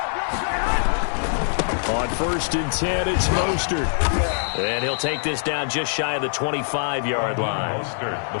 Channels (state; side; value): silent; right; digital silence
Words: On 1st and 10, it's Mostert. And he'll take this down just shy of the 25-yard line. Mostert, the